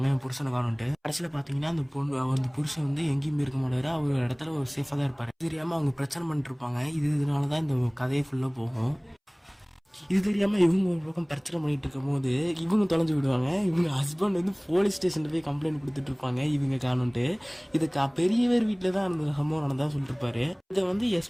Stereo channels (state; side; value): identical; both; correlation 1.00